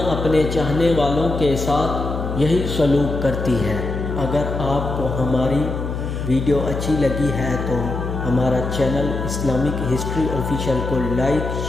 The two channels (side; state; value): left; noise; hum, 4 dB below the sound